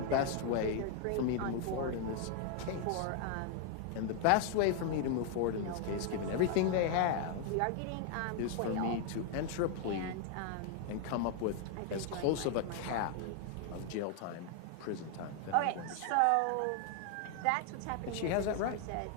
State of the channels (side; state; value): both; different; correlation 0.00